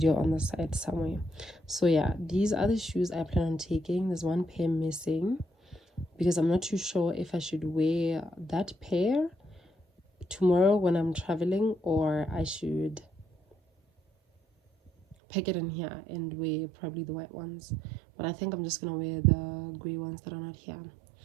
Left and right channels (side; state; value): left; drops out; at 15.2 s